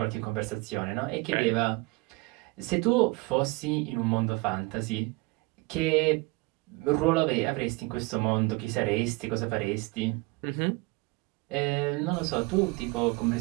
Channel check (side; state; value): left; quieter; 24.6 dB